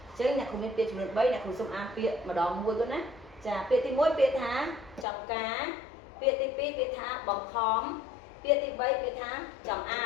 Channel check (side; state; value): right; drops out; at 5.1 s